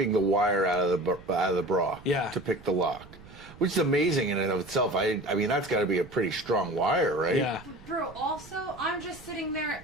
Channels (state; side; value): noise; right; rumble, 20 dB below the sound